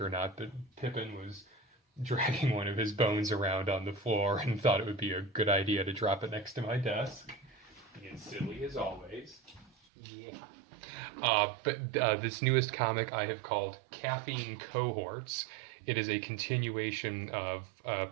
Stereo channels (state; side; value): drops out; left; at 9.7 s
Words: not, but Pippin was dragging one of his bones around on the floor and thought it would be a good idea to drop it next to my desk. Being silly as always. Yeah. But this newest comic I have called Caffeine Cohorts. It is a continuation of a